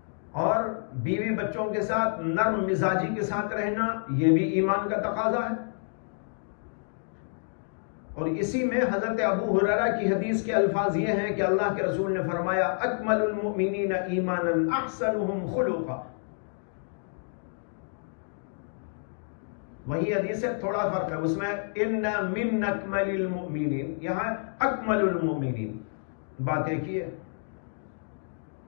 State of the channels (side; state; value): right; silent; digital silence